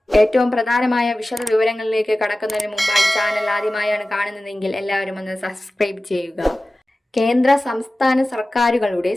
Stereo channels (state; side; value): normal; both; correlation 0.96